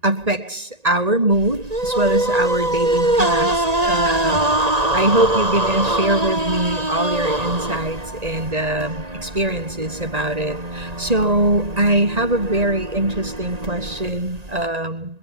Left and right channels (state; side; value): late; left; 1.9 ms